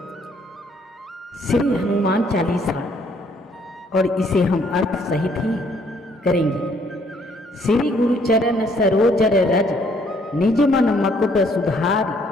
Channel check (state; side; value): normal; both; correlation 0.65